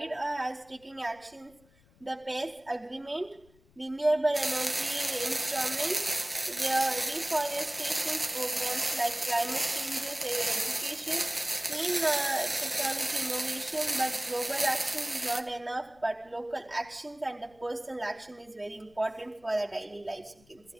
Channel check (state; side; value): noise; left; rumble, 29 dB below the sound